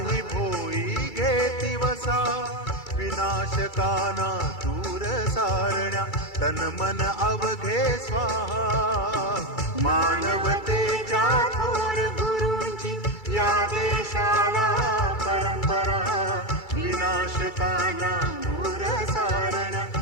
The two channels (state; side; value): late; right; 2.3 ms